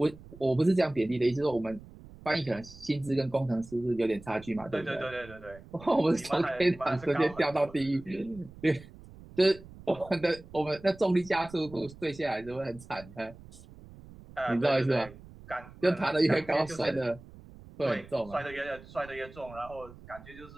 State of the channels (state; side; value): noise; right; rumble, 19 dB below the sound